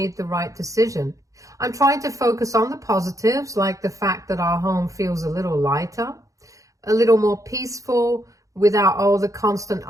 the right decision. I'm trying to focus on the positives, like the fact that our home feels a little lighter, a little more peaceful, without all the constant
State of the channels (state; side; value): late; left; 0.16 ms